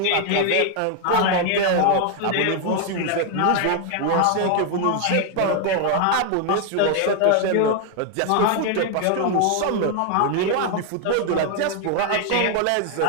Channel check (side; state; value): both; different; correlation 0.00